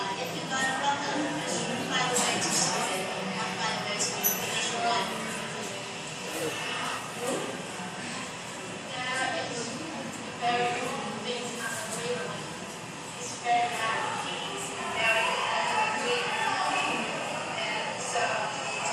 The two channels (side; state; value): both; identical; correlation 1.00